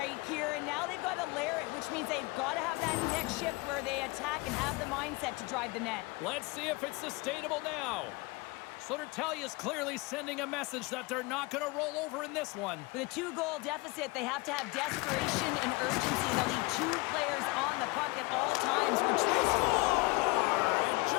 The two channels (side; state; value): right; quieter; 24.4 dB